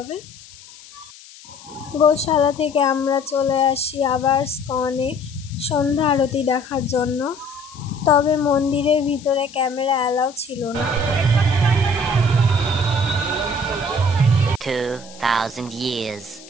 গোশালা থেকে আমরা চলে আসি আবার স্কনে সন্ধ্যা আরতি দেখার জন্য, তবে মন্দিরের ভিতরে ক্যামেরা অ্যালাউ ছিল না। 2000 years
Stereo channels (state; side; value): noise; left; hiss, 20 dB below the sound